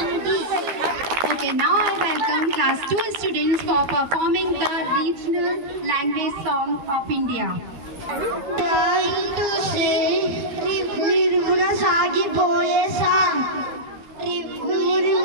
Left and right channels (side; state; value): left; late; 12 ms